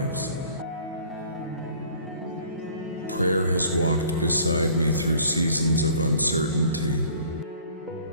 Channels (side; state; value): both; inverted; correlation -0.52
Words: Prayer has walked beside me through seasons of uncertainty,